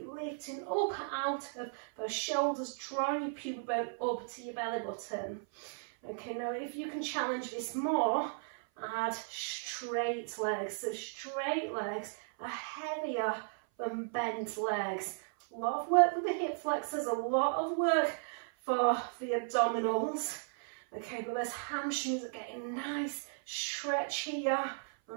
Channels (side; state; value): left; silent; 54 dB below the other